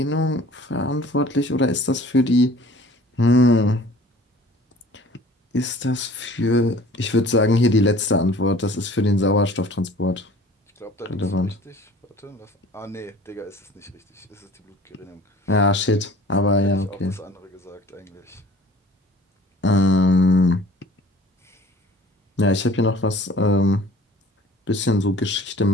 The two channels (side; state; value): both; normal; correlation 0.49